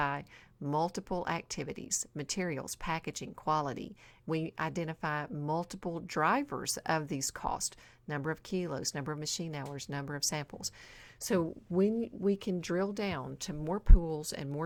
multiple activities, materials, packaging, quality. We identify multiple drivers of these costs, number of kilos, number of machine hours, number of samples. So when we can drill down to more pools and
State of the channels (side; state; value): both; identical; correlation 1.00